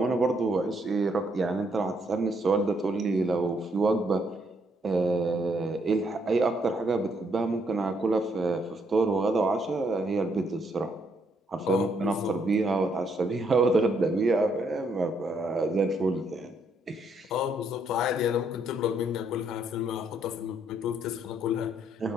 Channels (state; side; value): normal; both; correlation 0.72